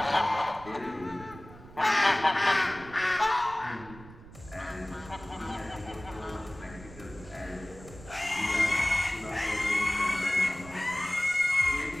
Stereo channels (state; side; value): noise; right; rumble, 18 dB below the sound